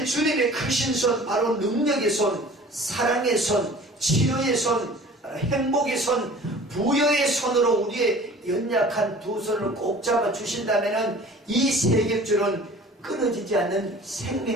주님의 크신 손, 바로 능력의 손, 사랑의 손, 치료의 손, 행복의 손, 부여의 손으로 우리의 연약한 두 손을 꼭 잡아 주신다면 이 세겹줄은 끊어지지 않는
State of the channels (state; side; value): normal; both; correlation 0.45